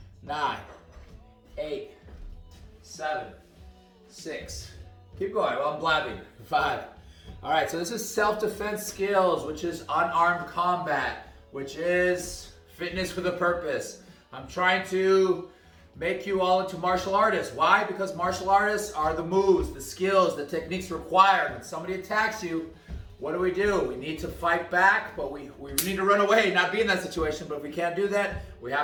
9, 8, 7, 6. Keep going while I'm blabbing. 5. All right, so this is self-defense skills, which is unarmed combat, which is fitness with a purpose. I'm trying to make you all into martial artists. Why? Because martial artists are the moves, the skills, the techniques required. When somebody attacks you, what do? We need to fight back, but we need to run away, not be in that situation. But if we can't do that, we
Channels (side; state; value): both; identical; correlation 1.00